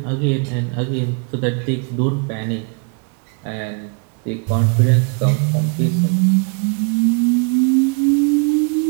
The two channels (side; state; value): left; quieter; 36.9 dB